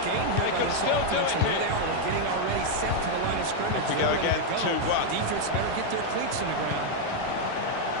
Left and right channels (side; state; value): both; different; correlation 0.00